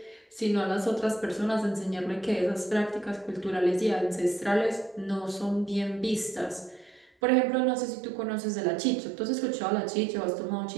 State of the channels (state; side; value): drops out; left; at 7.1 s